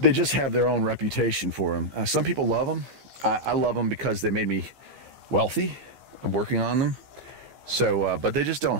have their own reputation for them. Some people love them. I love them because they made me wealthy. I'm working on them. So, but they just don't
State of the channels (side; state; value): left; late; 15 ms